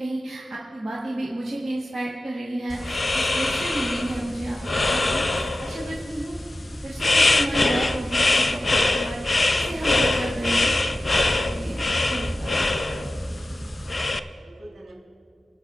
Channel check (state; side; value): normal; both; correlation 0.94